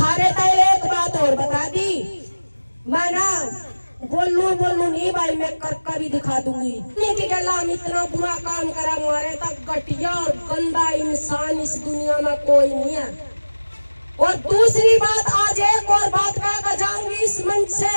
तो एक बात और बता दी, मैं ना बोलू नहीं भाई, मैं करके भी दिखा दूंगी। कि हम इतना बुरा काम करा, हमारे तक घटिया और गंदा इंसान इस दुनिया में कोई नहीं है। और दूसरी बात, आज एक और बात कह जाऊंगी इस मंच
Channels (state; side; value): inverted; both; correlation -1.00